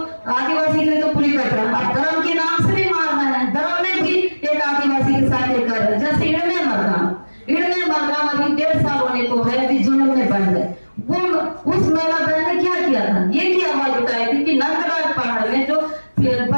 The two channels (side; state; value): both; inverted; correlation -1.00